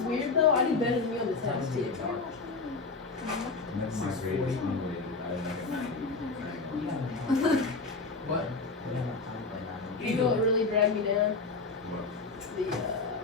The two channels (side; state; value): right; quieter; 4.0 dB